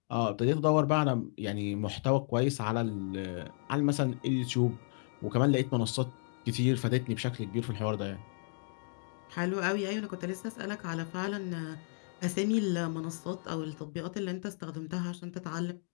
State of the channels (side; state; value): right; silent; 56 dB below the other